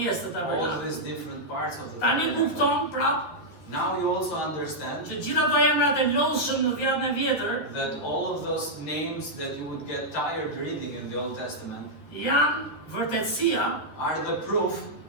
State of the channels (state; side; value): late; right; 12 ms